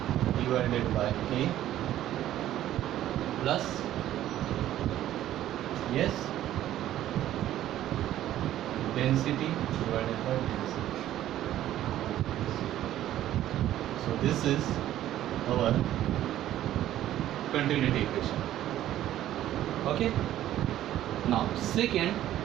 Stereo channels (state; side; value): quieter; left; 12.9 dB